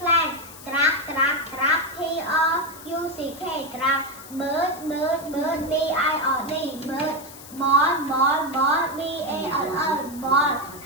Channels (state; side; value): noise; left; hiss, 17 dB below the sound